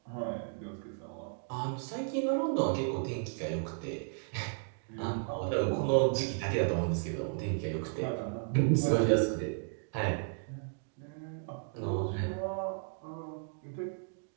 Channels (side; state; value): left; silent; digital silence